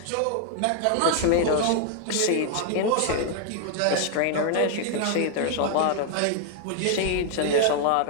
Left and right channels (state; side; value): different; both; correlation 0.00